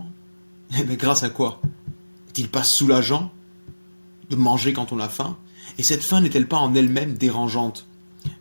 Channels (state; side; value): inverted; both; correlation -1.00